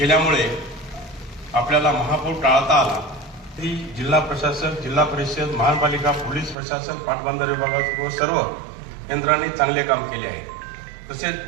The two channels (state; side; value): drops out; left; at 6.6 s